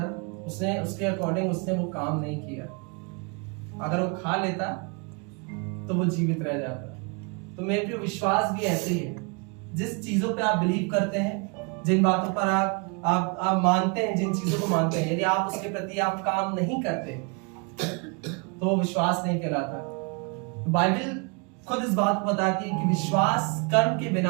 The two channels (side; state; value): left; quieter; 33.3 dB